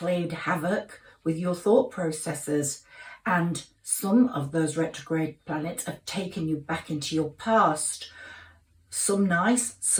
havoc with your thought processes, and some of those retrograde planets have taken you back into your past. Some nice,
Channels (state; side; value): identical; both; correlation 1.00